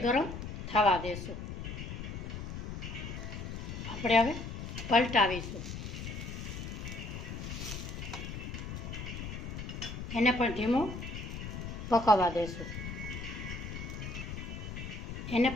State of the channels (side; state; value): left; noise; rumble, 7 dB below the sound